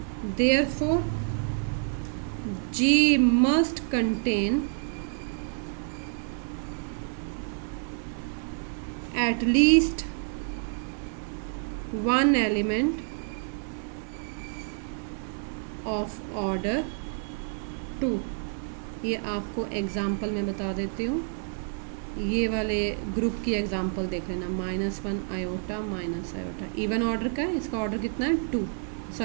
therefore G must contain at least one element of order 2. ये आपको एग्जाम्पल में बता देती हूँ. ये वाले ग्रुप की एग्जांपल देख लेना. -1 iota minus iota even order का है. इसका ऑर्डर कितना है 2.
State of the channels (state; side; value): silent; left; 59 dB below the other